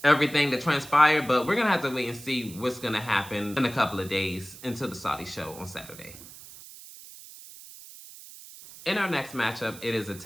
everything that transpired, but we're gonna have to wait and see what's gonna happen in a couple of days until the Saudi show on Saturday. In our next matchup, it is a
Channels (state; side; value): noise; right; hiss, 17 dB below the sound